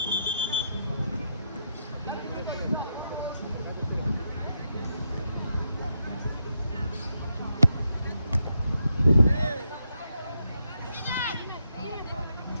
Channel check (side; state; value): both; inverted; correlation -0.82